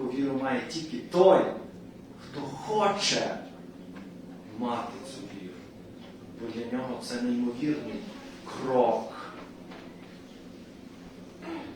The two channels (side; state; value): both; identical; correlation 1.00